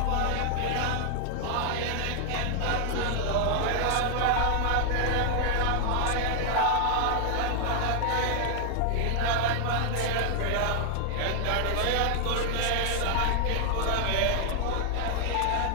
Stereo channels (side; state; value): both; different; correlation 0.00